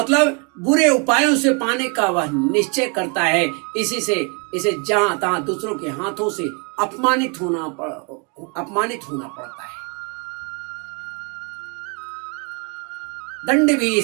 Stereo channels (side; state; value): left; quieter; 34.7 dB